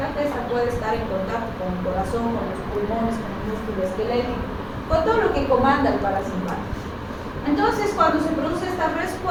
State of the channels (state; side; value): identical; both; correlation 1.00